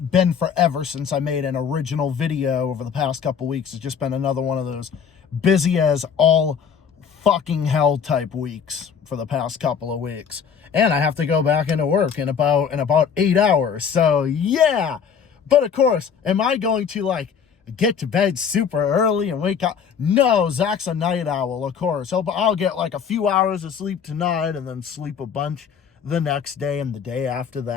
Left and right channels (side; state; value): right; quieter; 7.1 dB